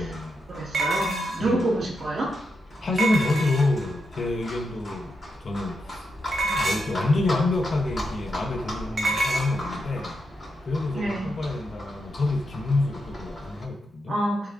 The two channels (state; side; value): normal; both; correlation 0.85